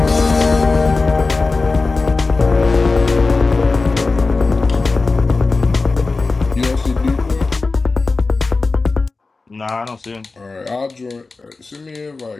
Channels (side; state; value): right; quieter; 3.8 dB